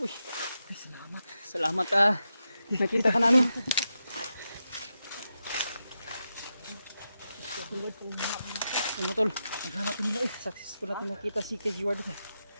Ay, salamat. Salamat nakita ka namin. Ano tol? Naghanap nila eh. Successful natin nakita si Edward.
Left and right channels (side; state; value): both; inverted; correlation -0.88